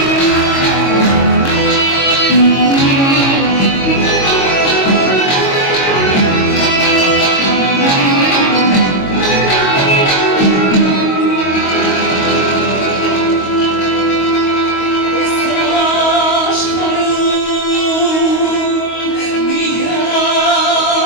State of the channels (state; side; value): late; right; 22 ms